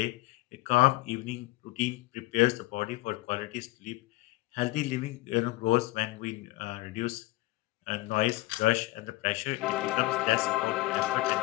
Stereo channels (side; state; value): right; quieter; 19.6 dB